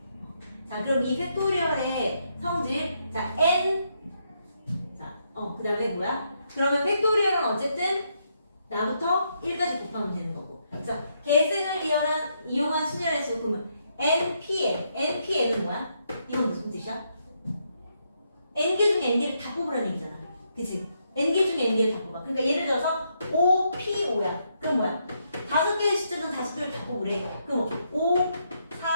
자, 그럼 이 팩토리얼의 성질, 자, n, 자, 그 다음에 뭐야? 그러면 팩토리얼은 어쨌든 나부터 1까지 곱하면 되는 거고. 그래서 계승을 이용한 순열의 수, 그러면 npn, npn은 뭐야? 이건 무슨 뜻이야? n개 중에 n개를 다 뽑으라는 얘기잖아. 그치? n개 중에 n개를 다 뽑아. 그러니까 예를 들어서 5p5야. 그럼 뭐야? 5개의 숫자는 5개를 다 뽑으래. 그럼 5,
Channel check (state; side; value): inverted; both; correlation -0.77